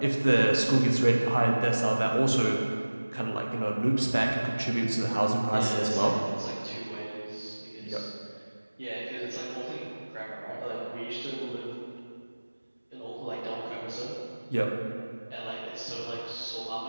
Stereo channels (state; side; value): inverted; both; correlation -1.00